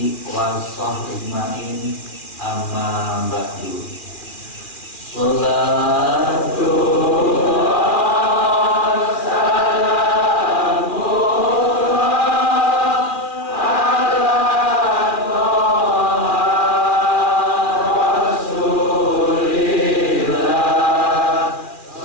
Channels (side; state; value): right; late; 2.4 ms